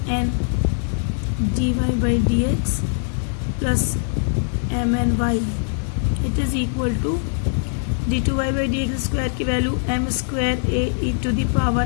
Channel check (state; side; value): silent; right; digital silence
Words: n d y by d x plus M n y it is equal to d two y by d x square की value m square A E to the